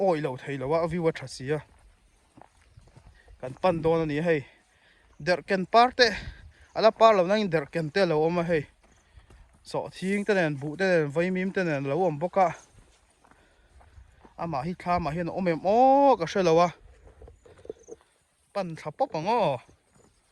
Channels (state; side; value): identical; both; correlation 1.00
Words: oi lo thei lo wa viwa tha sia kan pan don ani hei der ken parte ala par lo nang der ken te lo oma hei so thing te nen bu te nen vai mim te nen lo om boka ama hi tha ma hian omem ka shelo wa pan tha pop ango